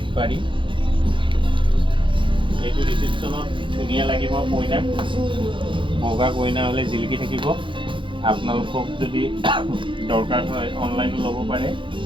পাৰি এইটো ৰিসেপশ্যনত ধুনীয়া লাগিব কইনাক বগা কইনা হ'লে জিলিকি থাকিব আপোনালোকক যদি দৰকাৰ হয় অনলাইনো ল'ব পাৰে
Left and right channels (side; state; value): left; late; 0.24 ms